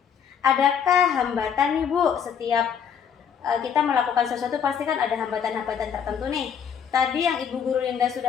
Adakah hambatan nih Bu? Setiap kita melakukan sesuatu pasti kan ada hambatan-hambatan tertentu nih. Tadi yang Ibu Guru Linda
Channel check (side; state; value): right; quieter; 7.8 dB